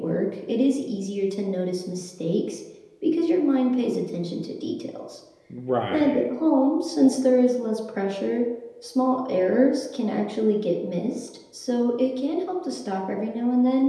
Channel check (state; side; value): identical; both; correlation 1.00